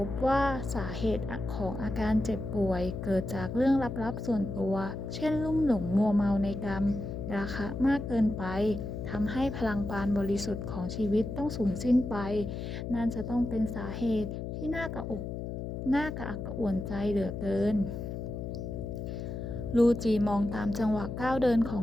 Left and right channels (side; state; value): left; noise; hum, 5 dB below the sound